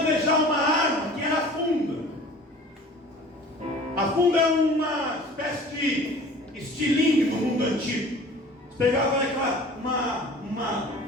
uma arma que era a funda. A funda é uma espécie de estilingue do mundo antigo. Você pegava uma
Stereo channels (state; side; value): normal; both; correlation 0.45